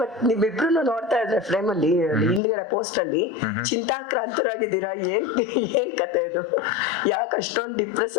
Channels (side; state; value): right; drops out; at 2.4 s